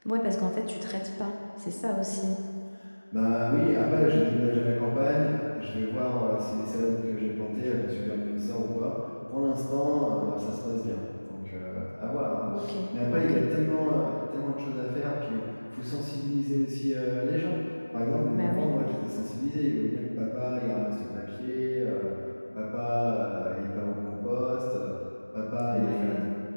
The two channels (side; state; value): both; inverted; correlation -1.00